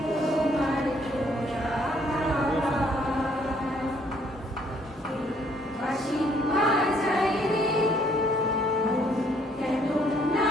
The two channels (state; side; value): normal; both; correlation 0.65